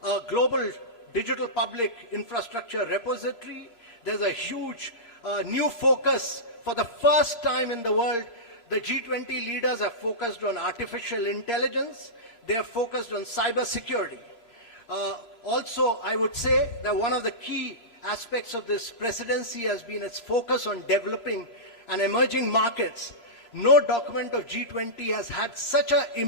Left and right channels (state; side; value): late; right; 3.0 ms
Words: a global digital public infrastructure repository. There's a huge new focus. For the first time in the world, the G20 leaders have focused on artificial intelligence. They have focused on cyber security. Also, I would say that one of the key aspects of this presidency has been its focus on developing and emerging markets. No document of G20 has had such an